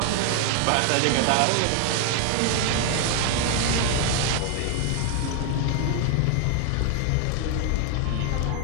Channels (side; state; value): both; different; correlation 0.00